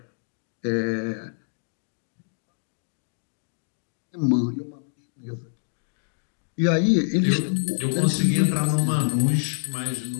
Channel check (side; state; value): right; silent; 61 dB below the other